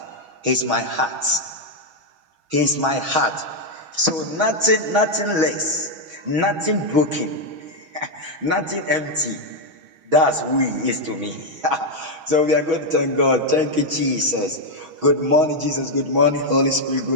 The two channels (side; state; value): left; late; 6.3 ms